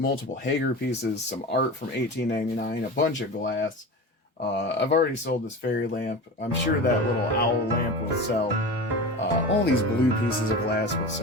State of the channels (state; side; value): normal; both; correlation 0.30